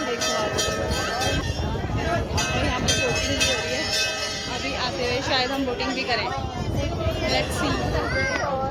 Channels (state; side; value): identical; both; correlation 1.00